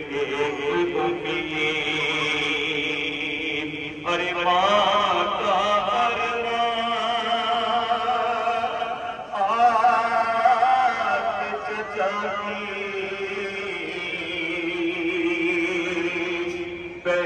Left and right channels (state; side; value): identical; both; correlation 1.00